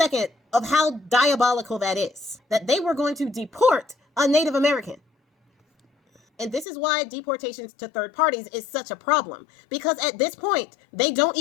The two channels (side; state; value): right; drops out; at 6.7 s